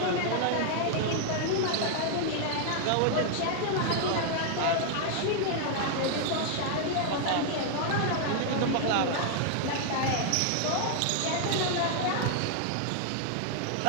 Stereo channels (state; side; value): different; both; correlation 0.00